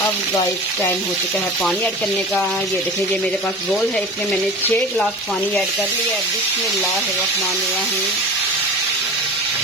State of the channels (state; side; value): normal; both; correlation 0.35